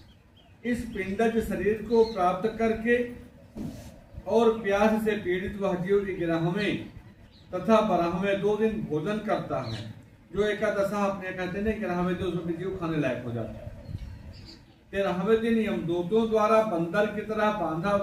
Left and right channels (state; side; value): identical; both; correlation 1.00